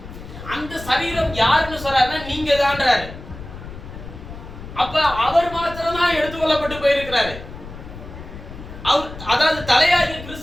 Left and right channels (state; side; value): noise; left; rumble, 13 dB below the sound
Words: அந்த சரீரம் யாருன்னு சொல்றாருன்னா நீங்க தான்றாரு. அப்ப அவர் மாத்திரம் தான் எடுத்துக்கொள்ளப்பட்டு போயிருக்கிறாரு. அதாவது தலையாகிய